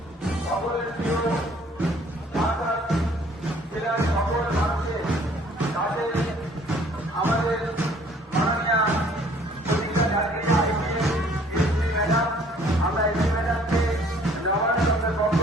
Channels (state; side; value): normal; both; correlation 0.57